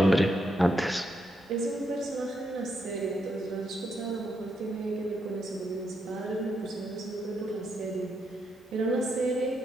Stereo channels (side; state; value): both; normal; correlation 0.80